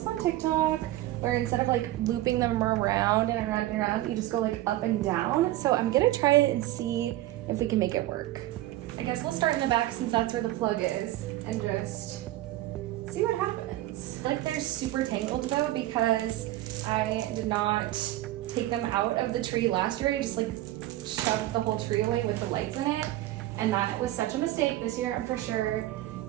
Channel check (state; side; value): quieter; left; 15.6 dB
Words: on TikTok where instead of like looping them around and around and around, you just go like up and down. So I'm gonna try it and see if we can make it work. I guess we'll start in the back since that's where the plug is and just see what happens. Like they're super tangled though because I did not take them out of the tree last year. I just like shoved the whole tree away with the lights in it, and that was such a mistake. This year I'm for sure